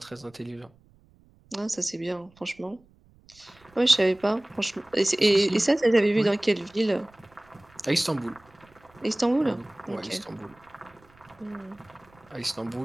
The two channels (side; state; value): right; noise; rumble, 29 dB below the sound